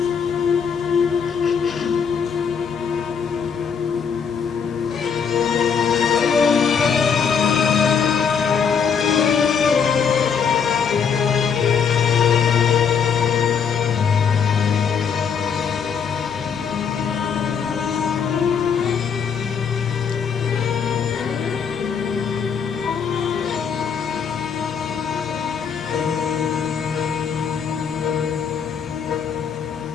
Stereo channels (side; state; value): right; quieter; 6.7 dB